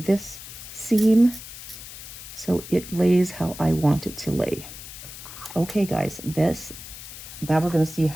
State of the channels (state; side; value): noise; left; hiss, 13 dB below the sound